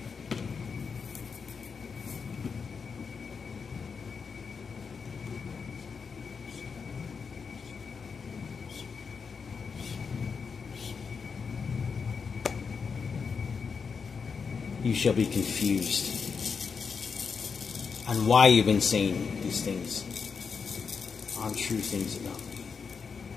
You shall be confused on why you've been saying these things, untrue things about me.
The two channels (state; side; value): quieter; right; 5.7 dB